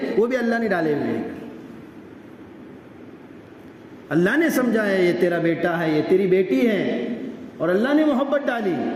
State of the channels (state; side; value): identical; both; correlation 1.00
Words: وہ بھی اللہ نے ڈالے ہوئے ہیں۔ اللہ نے سمجھا ہے یہ تیرا بیٹا ہے، یہ تیری بیٹی ہے، اور اللہ نے محبت ڈالی،